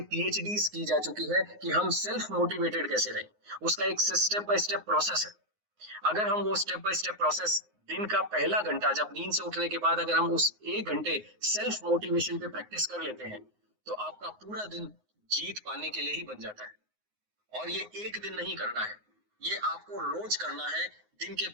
PhDs की जा चुकी है कि हम सेल्फ मोटिवेटेड कैसे रहें। उसका एक स्टेप बाय स्टेप प्रोसेस है। अगर हम वो स्टेप बाय स्टेप प्रोसेस दिन का पहला घंटा, जब नींद से उठने के बाद अगर हम उस 1 घंटे सेल्फ मोटिवेशन पे प्रैक्टिस कर लेते हैं तो आपका पूरा दिन जीत पाने के लिए ही बन जाता है। और ये एक दिन नहीं करना है, ये आपको रोज करना है। दिन के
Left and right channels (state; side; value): late; left; 9.6 ms